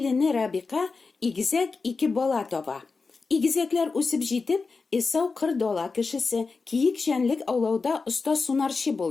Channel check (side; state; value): right; quieter; 4.3 dB